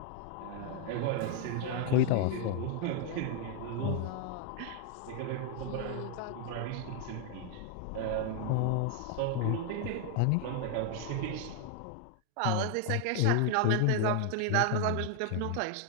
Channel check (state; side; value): different; both; correlation 0.00